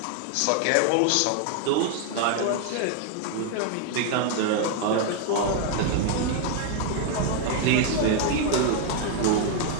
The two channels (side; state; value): both; different; correlation 0.00